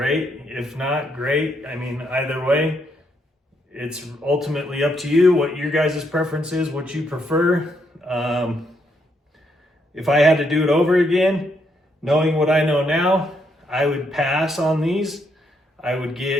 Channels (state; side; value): normal; both; correlation 0.76